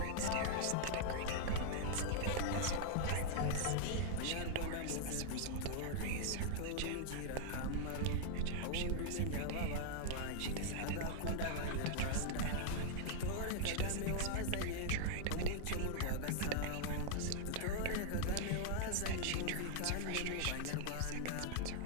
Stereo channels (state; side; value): different; both; correlation 0.00